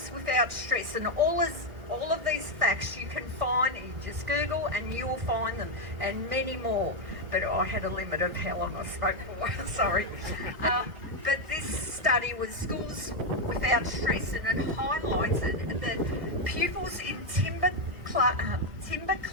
Without Stress, and all of these facts you can find, you just Google and you will find them, and many more. But I had a limit of how long I spoke for, sorry. But this study was Schools Without Stress, and it highlighted that pupils in timber-clad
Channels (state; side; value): late; left; 1.8 ms